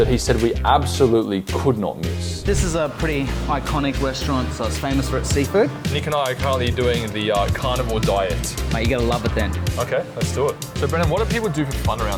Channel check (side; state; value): both; identical; correlation 1.00